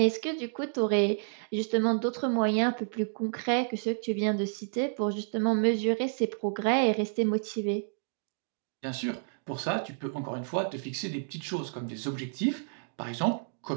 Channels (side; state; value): left; silent; digital silence